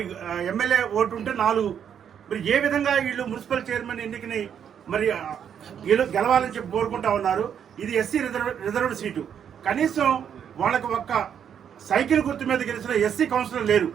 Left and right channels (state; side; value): quieter; left; 8.4 dB